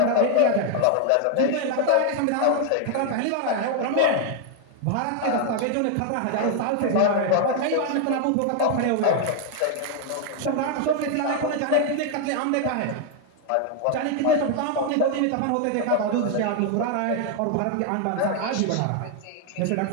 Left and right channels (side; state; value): both; different; correlation 0.00